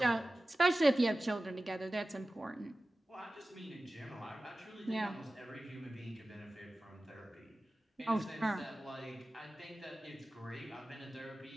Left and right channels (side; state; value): both; normal; correlation 0.96